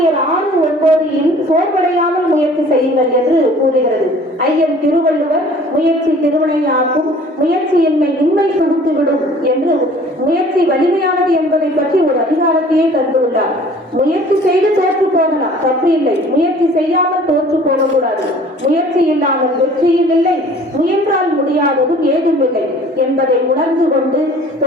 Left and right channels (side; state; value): both; normal; correlation 0.50